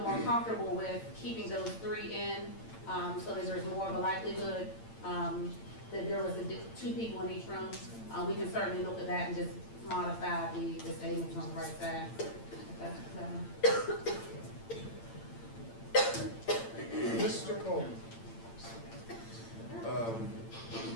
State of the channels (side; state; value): right; late; 8.8 ms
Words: more comfortable with keeping those 3 in, so that there's more of a likelihood that there was 2 people in each room, we can certainly look at that and just modify the statements on the right side. Mr. Cole?